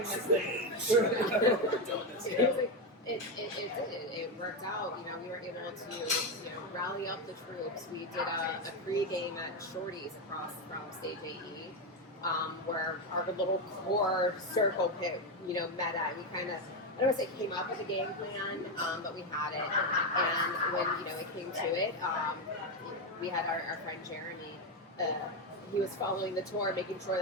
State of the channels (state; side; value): normal; both; correlation 0.09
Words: this thing. It worked out. We were able to, rally up the troops. We did a pre-game at Shorty's across from Stage AE, where our little core circle pit, met at. We kind of, I don't want to say came up with a game plan, but we had it. And when, it came to it, we had our friend Jeremy. He was following the tour, making sure